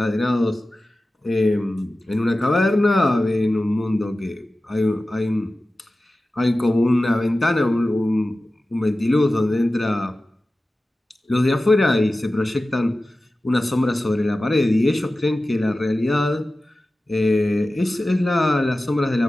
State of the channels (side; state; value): both; normal; correlation 0.95